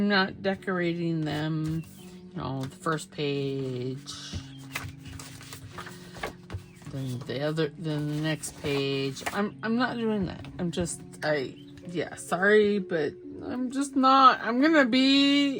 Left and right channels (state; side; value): identical; both; correlation 1.00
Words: not decorating them, you know, the first page, then the next page. I'm not doing that. Sorry, but I'm just not. I'm going to